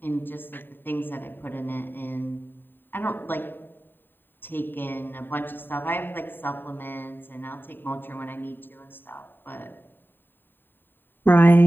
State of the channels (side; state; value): right; late; 0.094 ms